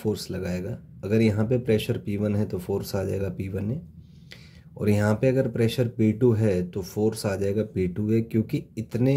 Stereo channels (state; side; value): identical; both; correlation 1.00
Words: लगाएगा। अगर यहाँ पे प्रेशर P1 है तो फोर्स आ जाएगा P1A, और यहाँ पे अगर प्रेशर P2 है तो फोर्स आ जाएगा P2A, क्योंकि इतने